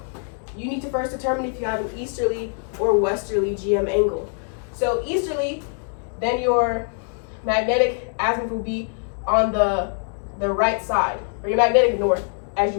you need to first determine if you have an easterly or westerly GM angle. So, easterly, then your magnetic azimuth will be on the right side, or your magnetic north, as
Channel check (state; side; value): silent; right; 63 dB below the other